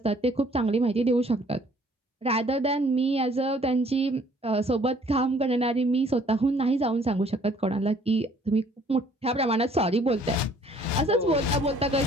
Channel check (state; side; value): normal; both; correlation 0.59